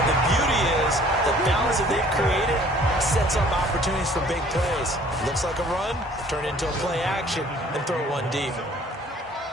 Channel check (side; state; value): both; normal; correlation 0.55